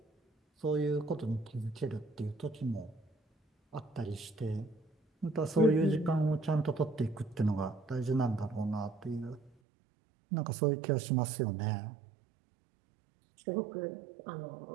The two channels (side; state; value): left; drops out; at 9.6 s